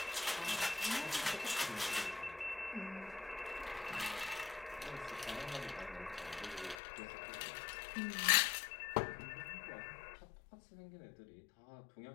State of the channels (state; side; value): drops out; right; at 6.8 s